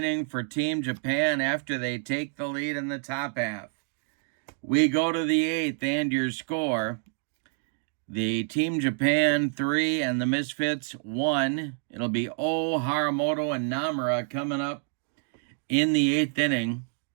for Team Japan after they take the lead in the top half. We go to the 8th, and your score. The Team Japan 3 and the Misfits 1. It'll be O, Haramoto, and Namura coming up in the 8th inning.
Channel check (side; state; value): left; silent; 60 dB below the other